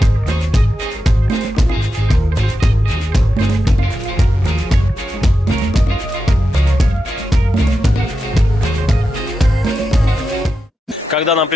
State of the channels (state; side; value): normal; both; correlation 0.89